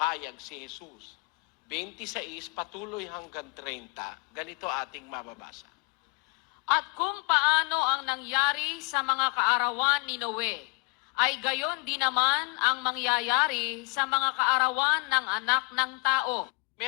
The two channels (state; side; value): quieter; right; 31.7 dB